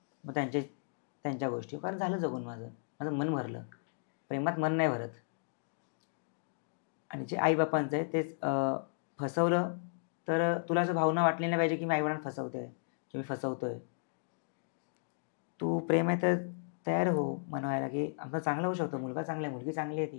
मग त्यांच्या गोष्टी, कारण झालं जगून माझं मन भरलं. प्रेमात मन नाही भरत. आणि जे आई बापांचं आहे तेच फसवलं तर तुला असं भावना वाटली नाही पाहिजे की मी आईवडिलांना फसवतोय की मी फसवतोय. तू प्रेम आहे तर तयार हो मनवायला की आमचं चांगलं होऊ शकतं, मुलगा चांगला आहे, मुलगी चांगली आहे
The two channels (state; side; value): silent; right; digital silence